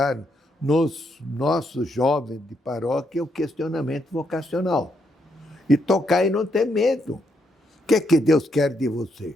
nos nossos jovens de paróquia o questionamento vocacional. E tocar e não ter medo. O que é que Deus quer de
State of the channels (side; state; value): both; normal; correlation 0.77